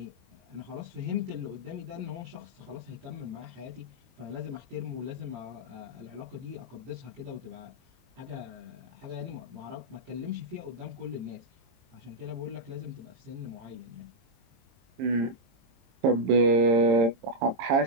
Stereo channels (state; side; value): late; left; 22 ms